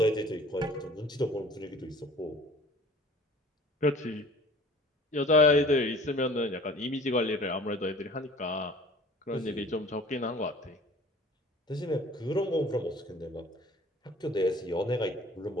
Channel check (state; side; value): normal; both; correlation 0.48